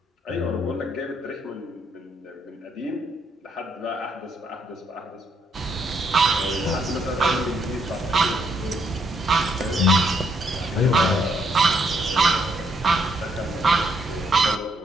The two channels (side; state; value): both; normal; correlation 0.73